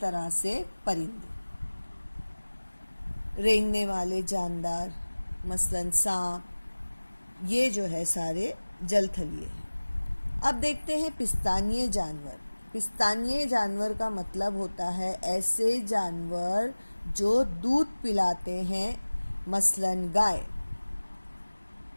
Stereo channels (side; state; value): both; inverted; correlation -1.00